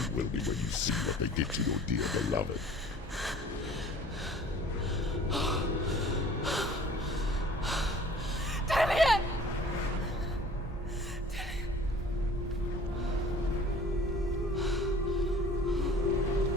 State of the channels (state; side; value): normal; both; correlation 0.49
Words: will be when you see what they did to your dear beloved. Damien!